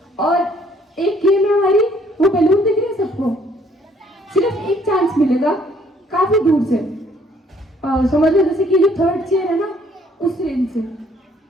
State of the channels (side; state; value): both; normal; correlation 0.63